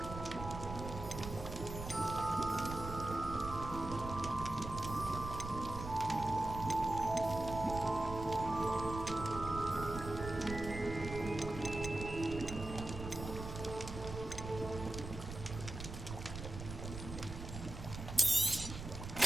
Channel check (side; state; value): right; noise; rumble, 8 dB below the sound